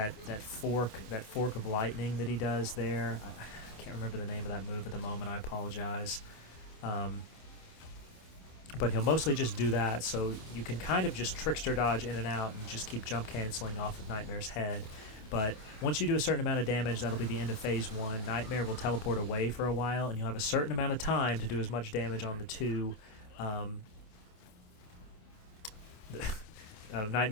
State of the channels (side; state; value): right; late; 27 ms